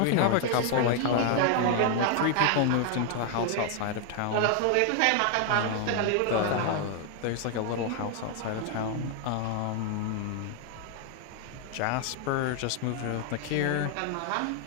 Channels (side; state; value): both; different; correlation 0.00